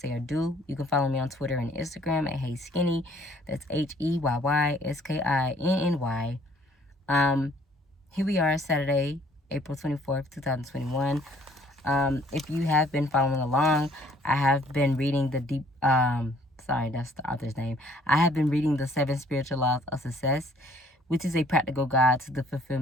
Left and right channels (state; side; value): normal; both; correlation 0.60